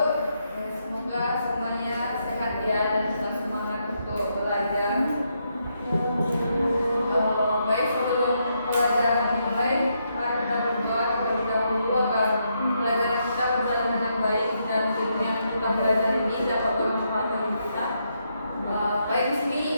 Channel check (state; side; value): inverted; both; correlation -0.79